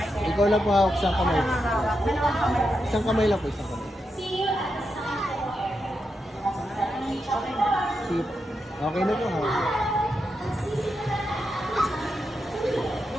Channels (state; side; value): normal; both; correlation 0.85